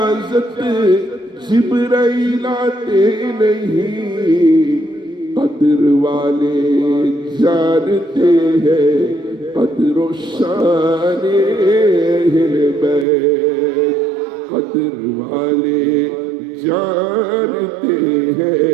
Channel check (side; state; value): left; drops out; at 13.1 s